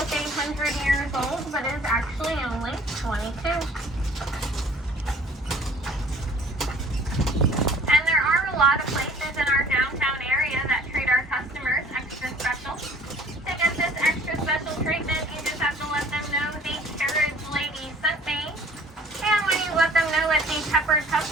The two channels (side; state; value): both; normal; correlation 0.52